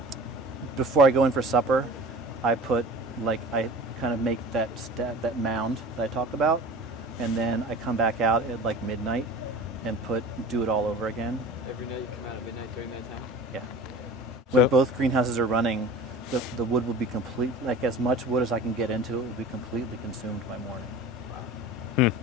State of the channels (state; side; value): normal; both; correlation 0.39